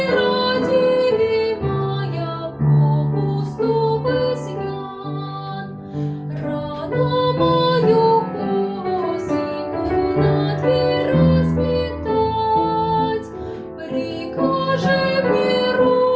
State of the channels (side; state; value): both; identical; correlation 1.00